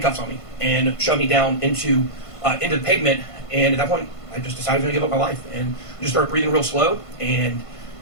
on me and shoved me down into the pavement. And at that point, I just decided to give up my life and just started breathing real slow and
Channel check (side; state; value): right; late; 1.5 ms